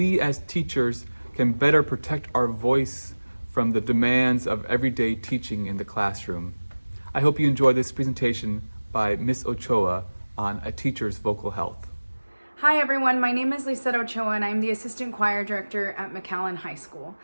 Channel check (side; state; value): both; inverted; correlation -1.00